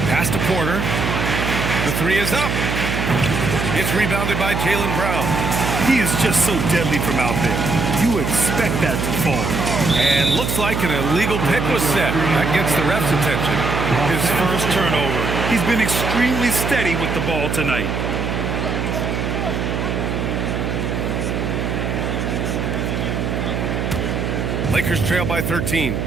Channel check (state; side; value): noise; right; hum, 2 dB below the sound